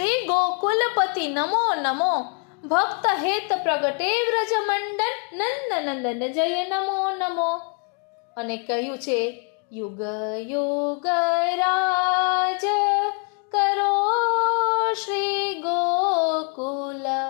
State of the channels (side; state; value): right; quieter; 38.1 dB